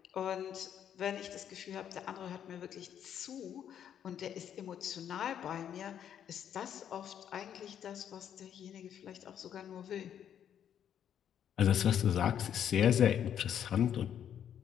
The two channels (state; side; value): quieter; right; 9.4 dB